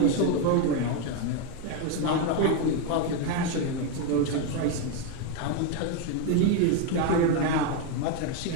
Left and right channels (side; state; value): both; different; correlation 0.02